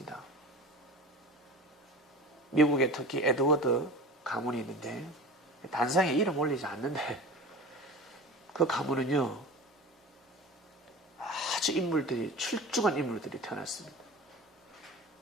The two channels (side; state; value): both; normal; correlation 0.35